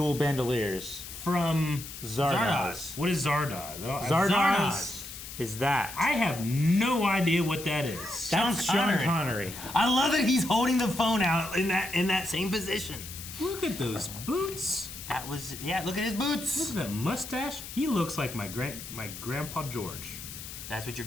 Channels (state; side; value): noise; left; hiss, 11 dB below the sound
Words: bandoliers. From Zardoz. What is Zardoz? Zardoz is that. I have no idea what that is. That's Sean Connery. I love that he's holding the phone out in that same position. Look at those boots. That was Look at his boots. Look at that mustache. He looks like my grandpa George. That's what your